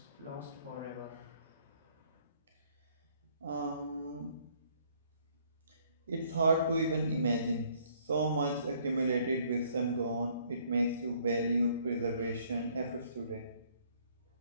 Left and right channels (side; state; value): both; inverted; correlation -0.63